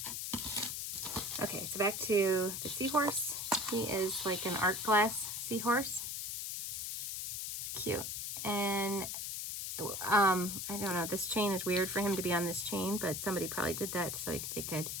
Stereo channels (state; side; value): noise; left; hiss, 4 dB below the sound